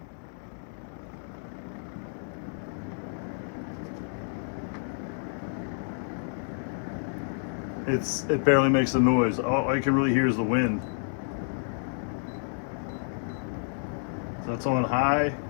It barely makes a noise. All you can really hear is the wind. So it's on high.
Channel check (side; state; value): right; silent; digital silence